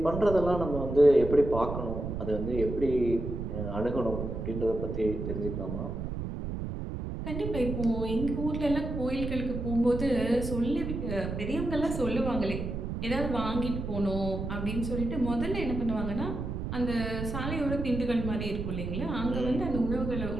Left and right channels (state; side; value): noise; right; rumble, 5 dB below the sound